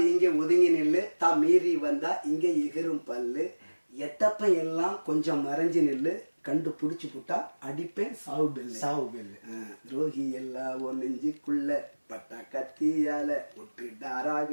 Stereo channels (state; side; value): inverted; both; correlation -1.00